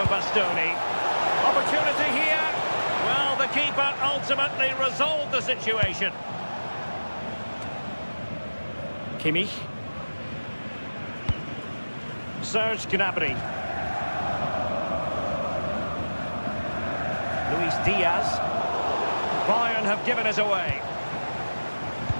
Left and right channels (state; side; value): inverted; both; correlation -1.00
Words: Bastoni. Opportunity here. Well, the keeper ultimately resolved the situation. Kimmich. Serge Gnabry. Luis Diaz. Bayern have given us away.